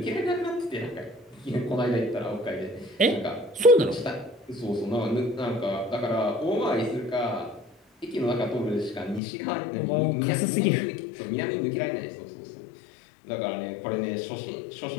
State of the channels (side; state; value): right; drops out; at 9.2 s